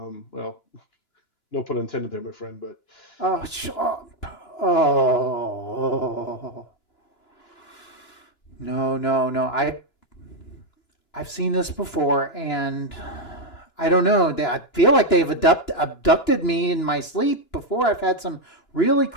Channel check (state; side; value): late; right; 2.9 ms